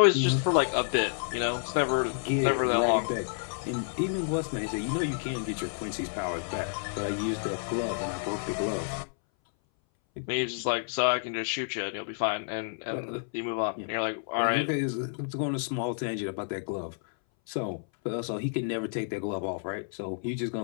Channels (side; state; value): right; silent; 58 dB below the other